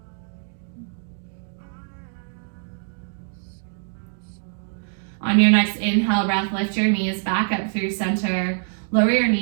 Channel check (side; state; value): left; silent; digital silence